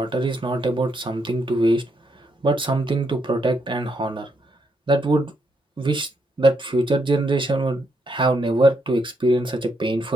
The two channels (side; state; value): both; normal; correlation 0.77